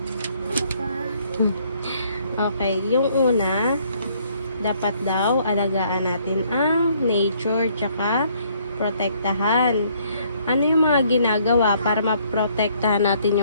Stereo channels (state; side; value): inverted; both; correlation -0.66